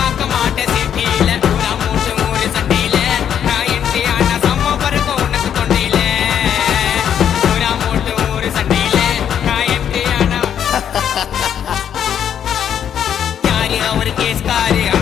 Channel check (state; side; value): quieter; right; 9.1 dB